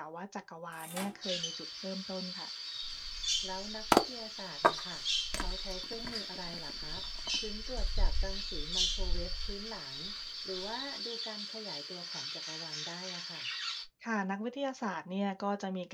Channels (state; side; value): identical; both; correlation 1.00